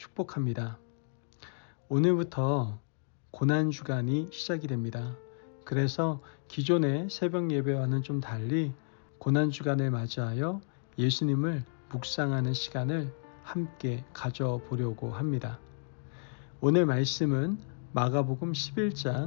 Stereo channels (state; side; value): silent; right; digital silence